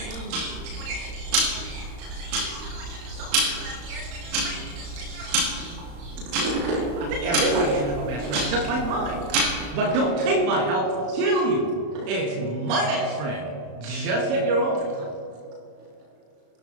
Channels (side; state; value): left; late; 35 ms